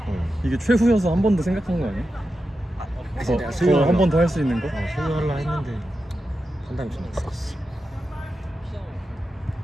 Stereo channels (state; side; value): normal; both; correlation 0.90